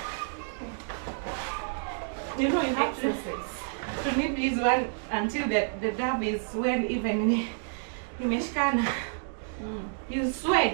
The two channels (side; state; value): left; silent; digital silence